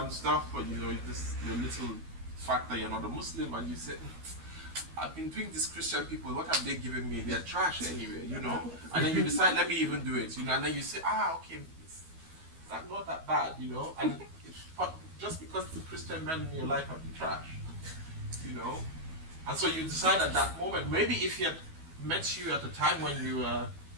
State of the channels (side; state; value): left; late; 12 ms